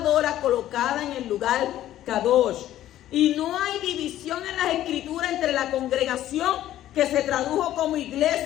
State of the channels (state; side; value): quieter; right; 13.0 dB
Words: colocada en el lugar Kadosh. Y no hay división en las escrituras entre la congregación que se tradujo como